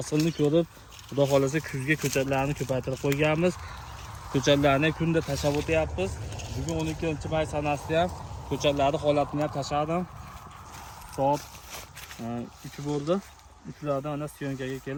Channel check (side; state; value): both; identical; correlation 1.00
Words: ko'rib, xudo xolasa kuzga ko'chatlarni ko'paytirib qo'yganmiz. Ko'chatlarni kunda tashlab o'tyapmiz. Bugun 12-may sanasida ham ko'chatlarni holatini ham tashladim. Soat 3 bo'ldi. Uchlardan ana syonkaga